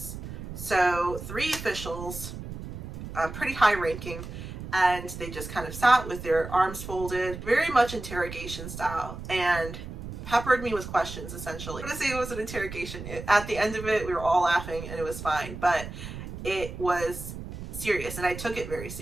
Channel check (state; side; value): noise; right; rumble, 10 dB below the sound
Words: So 3 officials, pretty high ranking, and they just kind of sat with their arms folded, very much interrogation style, and peppered me with questions, essentially. I'm gonna say it was an interrogation. At the end of it, we were all laughing and it was fine, but it was serious, and I took it very